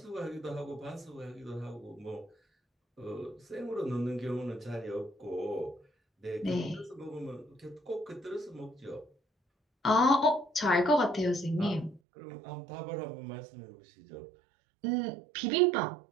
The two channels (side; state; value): left; drops out; at 12.0 s